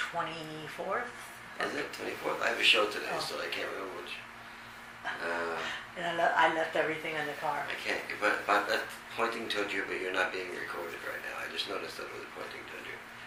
Is it 24th? I have a show today, Oh. so I can't remember which. And I left everything in the car. I can't. But that's pointing toward you, but you're not being recorded right now. I just noticed that it was pointing toward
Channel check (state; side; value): identical; both; correlation 1.00